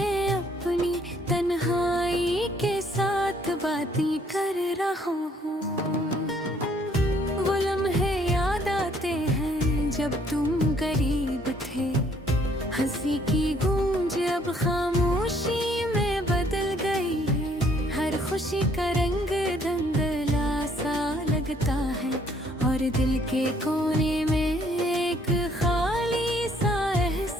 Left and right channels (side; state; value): both; normal; correlation 0.64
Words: अपनी तन्हाई के साथ बातें कर रहा हूँ। वो लम्हे याद आते हैं जब तुम करीब थे। हंसी की गूंज अब खामोशी में बदल गई है। हर खुशी का रंग धुंधला सा लगता है, और दिल के कोने में एक खाली सा